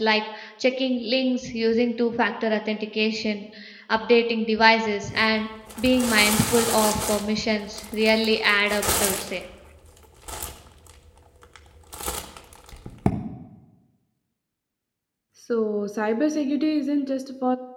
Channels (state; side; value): identical; both; correlation 1.00